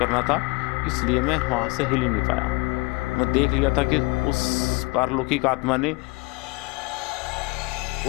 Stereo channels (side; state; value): right; quieter; 25.7 dB